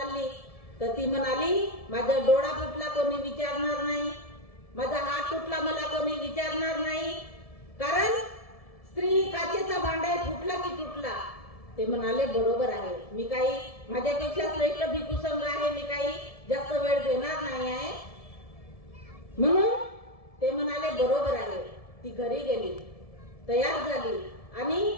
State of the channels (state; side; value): late; right; 1.7 ms